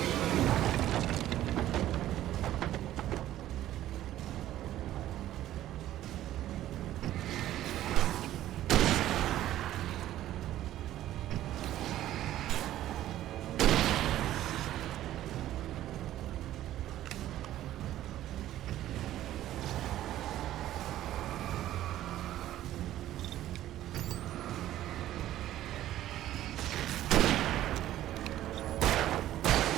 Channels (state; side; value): quieter; left; 13.4 dB